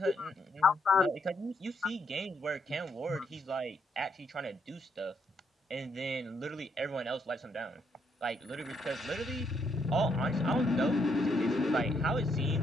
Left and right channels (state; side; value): normal; both; correlation 0.75